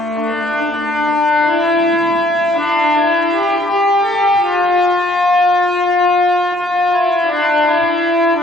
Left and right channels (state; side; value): normal; both; correlation 0.64